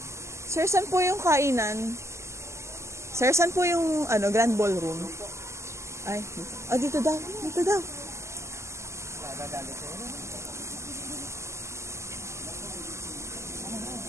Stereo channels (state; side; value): late; left; 0.13 ms